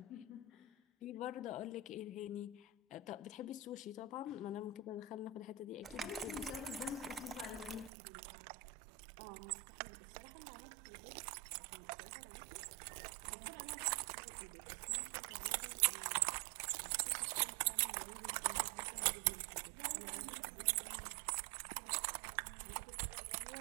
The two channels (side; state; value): left; drops out; at 7.9 s